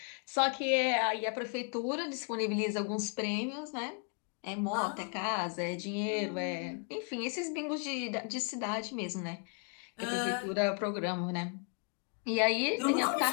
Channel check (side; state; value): right; quieter; 39.7 dB